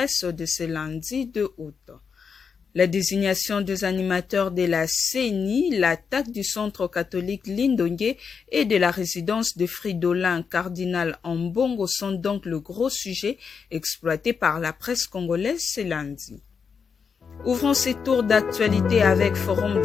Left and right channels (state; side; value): quieter; right; 6.0 dB